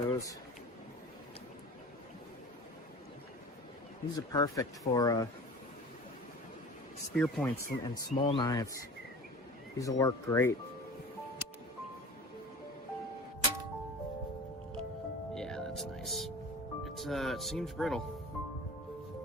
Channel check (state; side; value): normal; both; correlation 0.38